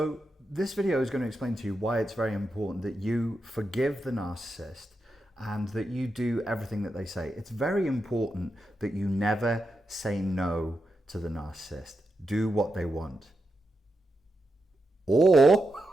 this video is going to explain to you why it's very important that you forgive the narcissist and that you do everything that they say. It's very important that you never say no to the narcissist. Do what they want. Or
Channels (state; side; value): normal; both; correlation 0.87